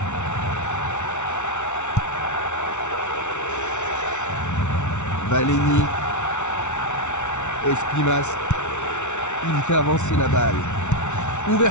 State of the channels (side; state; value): right; late; 0.83 ms